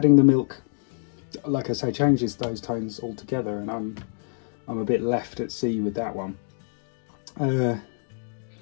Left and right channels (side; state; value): right; silent; 61 dB below the other